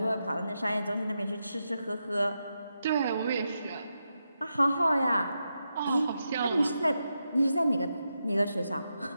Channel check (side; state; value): both; inverted; correlation -0.86